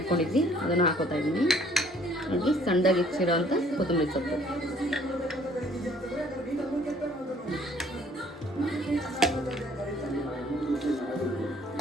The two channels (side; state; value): both; normal; correlation 0.59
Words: ಇಟ್ಕೊಂಡಿದ್ವಿ ಅದನ್ನು ಹಾಕೋತಾ ಇದ್ದೀನಿ. ಹಾಗೆ ಸಣ್ಣದಾಗಿ ಹೆಚ್ಚಿರೋ ಅಂಥ ಕೊತ್ತಂಬರಿ ಸೊಪ್ಪು,